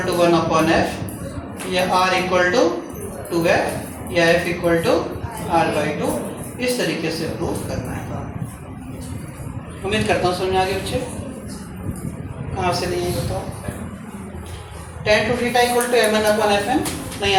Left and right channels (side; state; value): both; identical; correlation 1.00